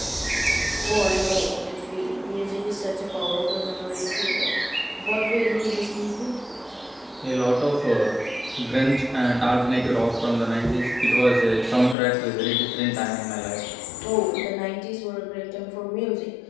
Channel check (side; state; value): right; drops out; at 12.0 s